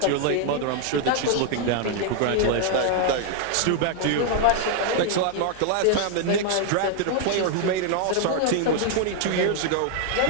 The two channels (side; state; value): both; different; correlation 0.00